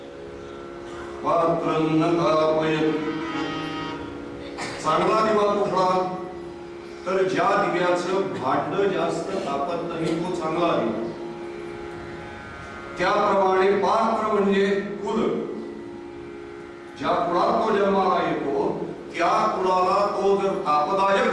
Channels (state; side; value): identical; both; correlation 1.00